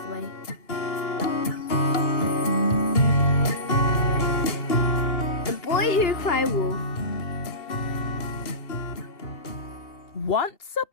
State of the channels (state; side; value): late; right; 2.9 ms